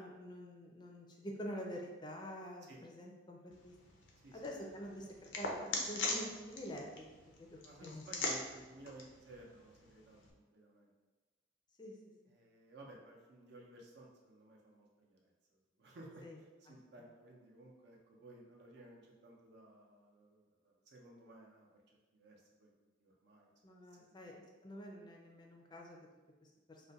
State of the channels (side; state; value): both; normal; correlation 0.19